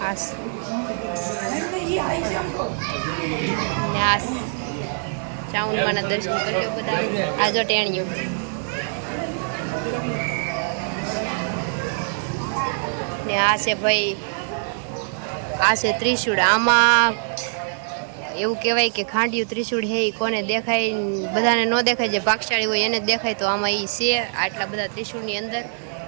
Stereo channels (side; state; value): left; silent; 63 dB below the other